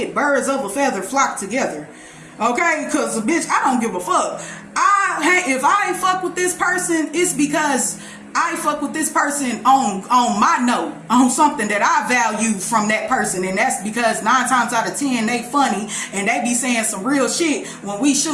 Birds of a feather flock together. Okay, because bitch, I don't give a fuck. If I fuck with this person, it's because I fuck with this person on my note, on something that I value from that person, and that's because 9 times out of 10 they funny and they be saying some real shit when we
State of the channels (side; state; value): both; identical; correlation 1.00